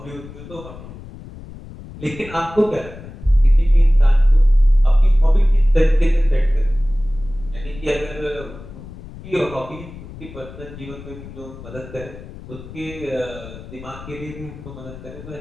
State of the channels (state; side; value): noise; left; rumble, 15 dB below the sound